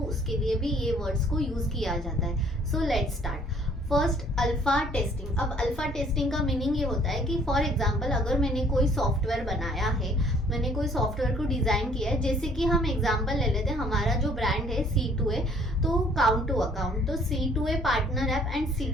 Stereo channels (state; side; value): normal; both; correlation 0.59